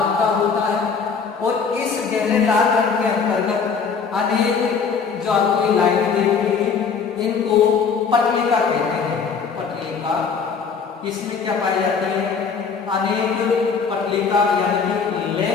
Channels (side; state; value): right; quieter; 5.7 dB